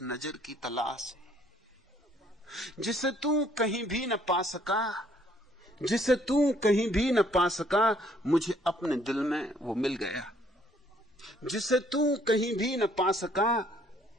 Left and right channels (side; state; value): both; normal; correlation 0.63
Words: नजर की तलाश है जिसे तू कहीं भी न पा सका, जिसे तू कहीं भी न पा सका, मुझे अपने दिल में वो मिल गया। जिसे तू कहीं भी न पा सका,